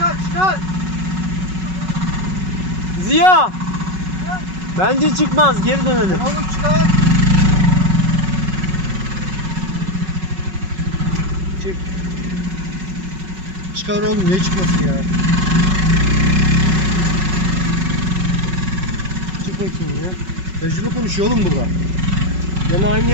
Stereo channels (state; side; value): late; left; 5.4 ms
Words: Ziya! Bence çıkmaz. Geri dönelim. Oğlum çıkar. Çık. Çıkar oğlum, niye çıkmasın ya? Çık bakayım ya. Tecrübe konuşuyor oğlum burada. Gene aynı